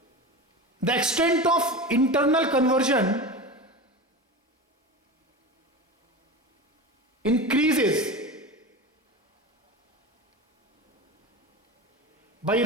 The extent of internal conversion increases by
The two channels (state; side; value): normal; both; correlation 0.27